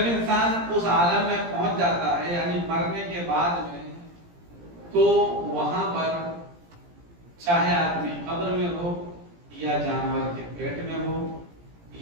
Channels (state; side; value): late; left; 17 ms